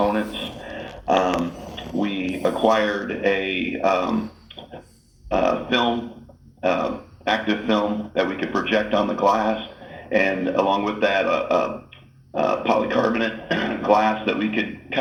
We acquired a film, active film that we could project on the glass, and along with that, polycarbonate glass that we could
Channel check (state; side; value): identical; both; correlation 1.00